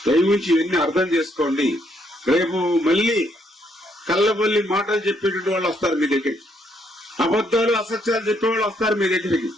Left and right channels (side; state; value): both; normal; correlation 0.72